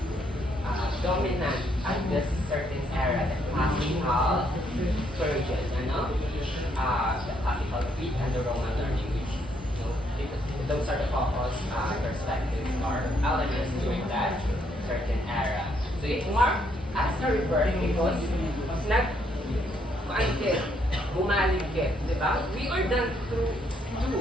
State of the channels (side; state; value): both; normal; correlation 0.72